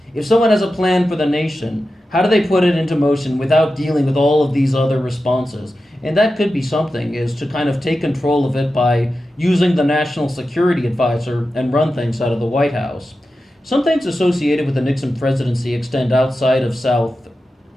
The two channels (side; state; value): both; normal; correlation 0.92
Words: If someone has a plan for the nation, how do they put it into motion without dealing with all of these other responses? And that could be something, is to kind of take control of it by using the National Security Advisor and run things out of the White House. Some things associated with the Nixon presidency extend outside of